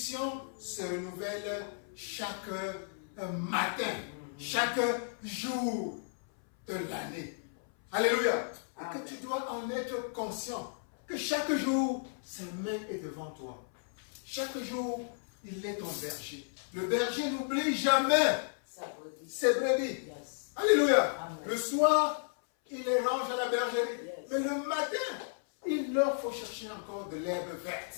se renouvellent chaque matin, chaque jour de l'année. Alléluia. Et que tu dois en être conscient, que chaque jour, sa main est devant toi. Chaque jour, il est ton berger. Le berger n'oublie jamais ses brebis. Yes. Alléluia. Amen. Le soir, il les range à la bergerie. Yes. Mais le matin, il leur faut chercher encore de l'herbe verte.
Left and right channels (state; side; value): silent; right; 55 dB below the other